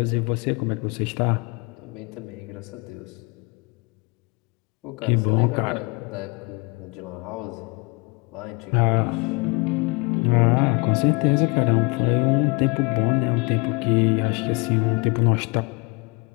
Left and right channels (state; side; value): quieter; right; 28.3 dB